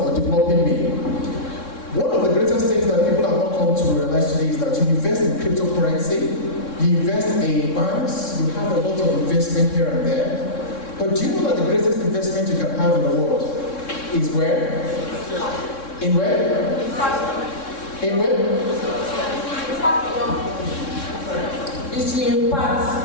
developing me. One of the greatest things that people have not come to realize today is that you invest in cryptocurrency, you invest in banks, you have a lot of investment here and there. But do you know that the greatest investment you can have in the world is where? In where? In where? Is to impart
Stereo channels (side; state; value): right; late; 3.6 ms